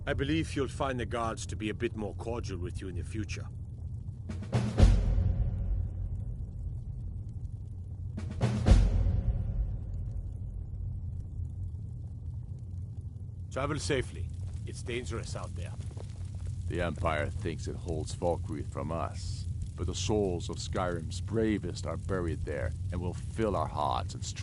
I believe you'll find the guards to be a bit more cordial with you in the future. Travel safely. It's dangerous out there. The Empire thinks it holds Valkyrie from us, but the souls of Skyrim's bravest are buried there and will fill our hearts and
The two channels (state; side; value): identical; both; correlation 1.00